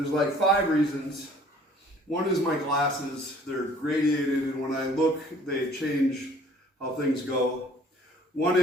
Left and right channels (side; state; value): both; normal; correlation 0.55